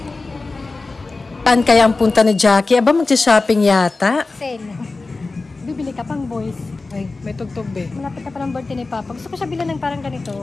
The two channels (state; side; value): quieter; right; 3.6 dB